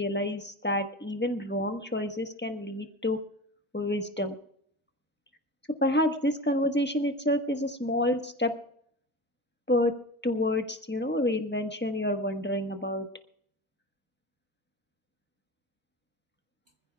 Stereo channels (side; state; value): both; normal; correlation 0.31